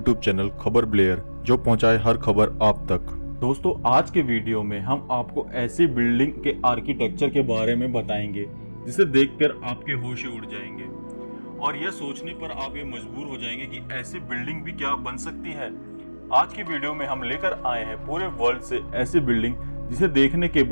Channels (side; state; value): both; inverted; correlation -1.00